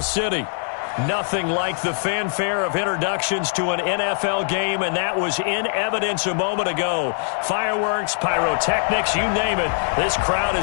City. Nothing like the fanfare of introductions to an NFL game, and that was in evidence a moment ago. Fireworks, pyrotechnics, you name it. This crowd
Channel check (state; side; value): silent; right; digital silence